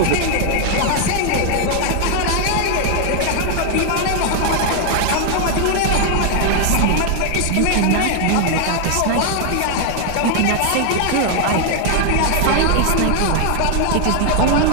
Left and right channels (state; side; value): different; both; correlation 0.00